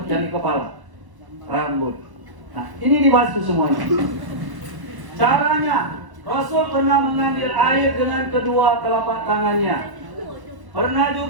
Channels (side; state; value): left; late; 1.0 ms